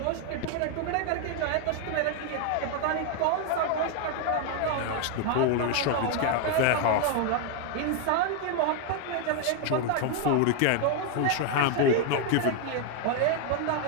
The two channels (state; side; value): different; both; correlation 0.00